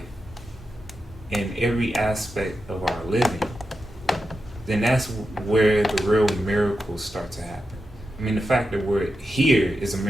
in every aspect of our living, then that's where the real miracles start to happen. I mean, the fact that we're here is a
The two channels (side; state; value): both; normal; correlation 0.89